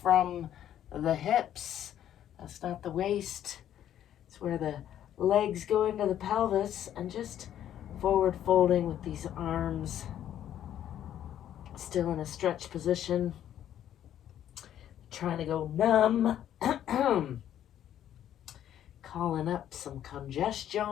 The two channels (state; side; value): quieter; right; 10.9 dB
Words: from the hips. That's not the waist. It's where the legs go into the pelvis, and just forward folding with these arms still in a stretch position, trying to go numb, calling up some